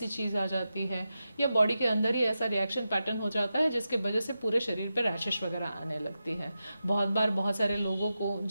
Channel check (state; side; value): inverted; both; correlation -0.91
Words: चीज़ आ जाती है या बॉडी के अंदर ही ऐसा रिएक्शन पैटर्न हो जाता है जिसके वजह से पूरे शरीर पर रैशेस वगैरह आने लगती है। बहुत बार बहुत सारे लोगों को